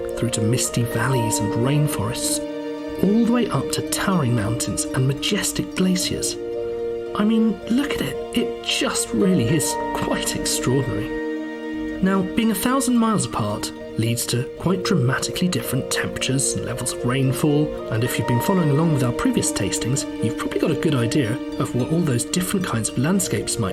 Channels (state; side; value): identical; both; correlation 1.00